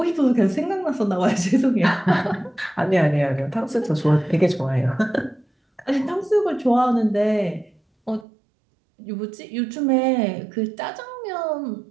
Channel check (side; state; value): left; drops out; at 8.2 s